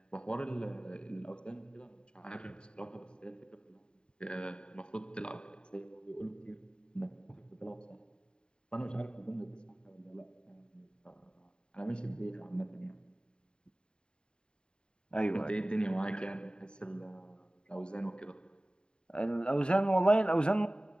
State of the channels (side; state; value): right; late; 0.050 ms